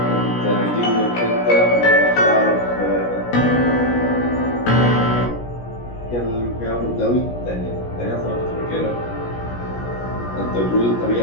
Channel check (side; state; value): right; late; 17 ms